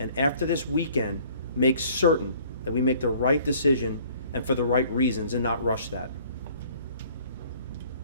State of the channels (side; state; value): both; inverted; correlation -0.55